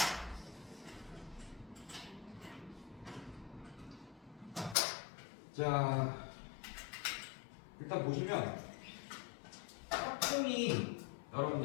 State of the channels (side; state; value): right; drops out; at 4.8 s